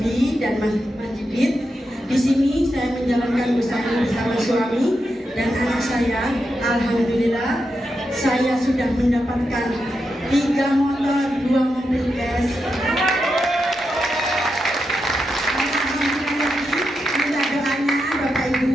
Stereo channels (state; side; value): normal; both; correlation 0.86